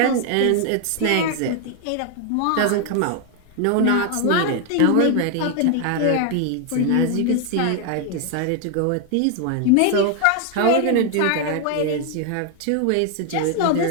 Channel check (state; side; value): different; both; correlation 0.01